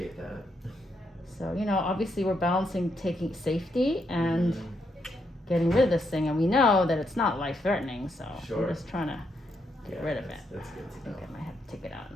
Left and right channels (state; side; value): normal; both; correlation 0.79